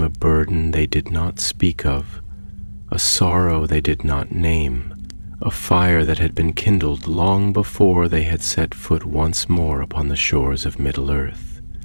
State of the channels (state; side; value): inverted; both; correlation -1.00